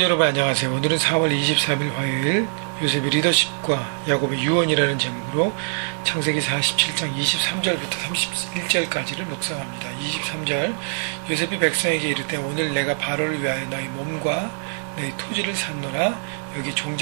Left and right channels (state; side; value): silent; left; 63 dB below the other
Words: 여러분 안녕하세요. 오늘은 4월 23일 화요일 요셉의 리더십과 야곱의 유언이라는 제목으로 창세기 47장 23절부터 31절까지를 묵상합니다. 23절 요셉이 백성에게 이르되 오늘 내가 바로를 위하여 너희 몸과 너희 토지를 샀노라. 여기